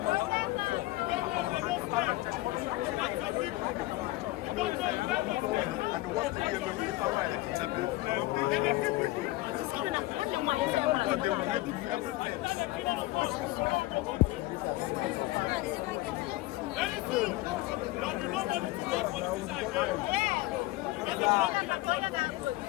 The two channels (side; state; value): right; quieter; 19.0 dB